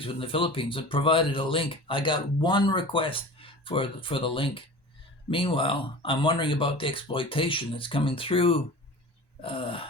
in the Philippines and provided a link. I got one request for the link. Meanwhile, I'm wondering about the exploitation that's coming through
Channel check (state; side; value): late; right; 1.1 ms